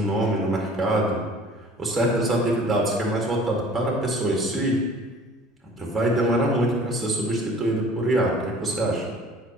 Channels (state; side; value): normal; both; correlation 0.49